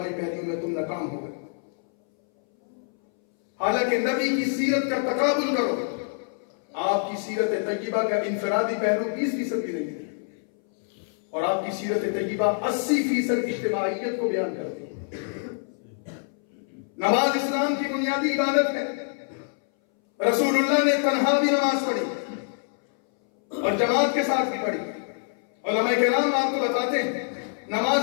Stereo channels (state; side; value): silent; right; 60 dB below the other